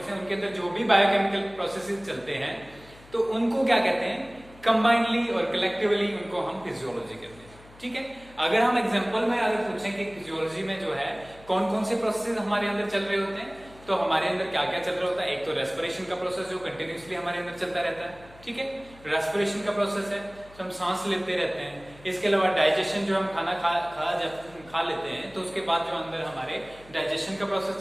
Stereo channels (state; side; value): noise; left; hum, 23 dB below the sound